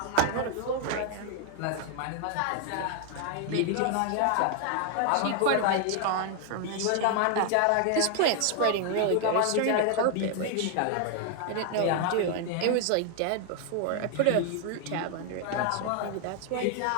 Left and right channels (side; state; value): both; different; correlation 0.00